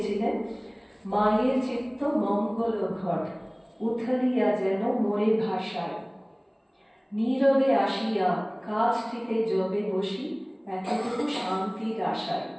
মায়ের চিত্ত মঙ্গল ঘট উথলিয়া যেন মোরে ভাষায়, নীরবে আসিয়া কাছটিতে জবে বসি এতটুকু শান্তির আশায়।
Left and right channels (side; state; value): both; identical; correlation 1.00